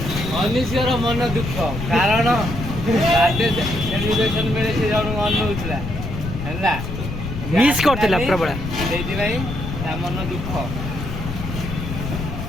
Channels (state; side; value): noise; left; rumble, 6 dB below the sound